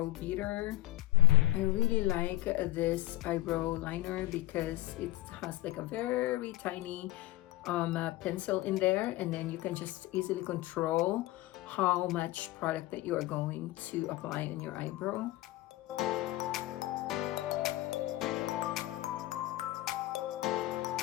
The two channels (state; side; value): quieter; right; 17.2 dB